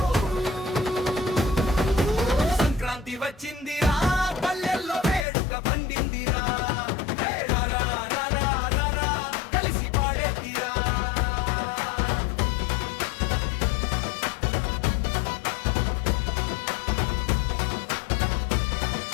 సంక్రాంతి వచ్చిందిరా పల్లెల్లో వేడుక పండిందిరా కలిసి పాడేదిరా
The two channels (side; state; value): right; drops out; at 5.2 s